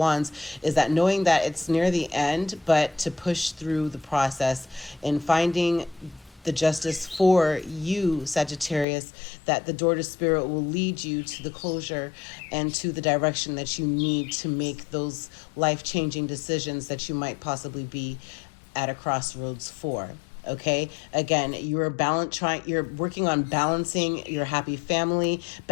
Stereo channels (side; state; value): right; drops out; at 8.8 s